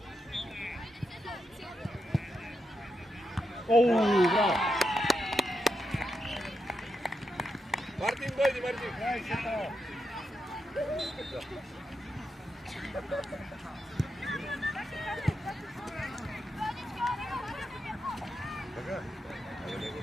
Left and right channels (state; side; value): normal; both; correlation 0.84